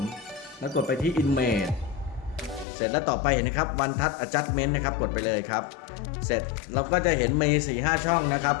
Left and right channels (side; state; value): right; drops out; at 2.7 s